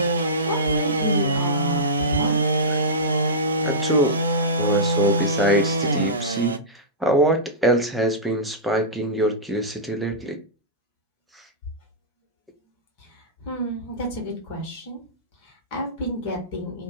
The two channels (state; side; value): normal; both; correlation -0.17